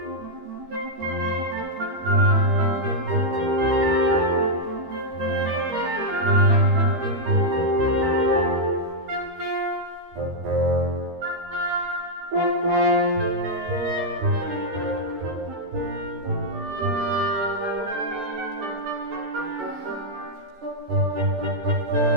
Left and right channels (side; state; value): left; late; 13 ms